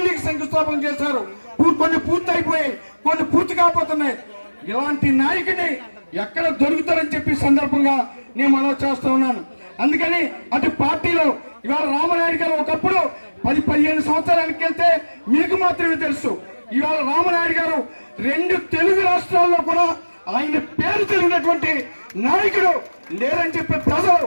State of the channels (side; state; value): both; inverted; correlation -1.00